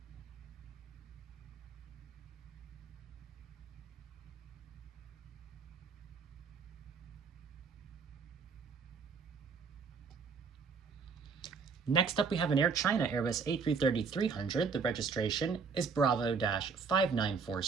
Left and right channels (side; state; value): left; quieter; 5.3 dB